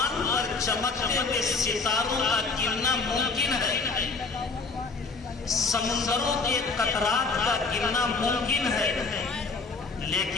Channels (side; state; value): right; quieter; 4.2 dB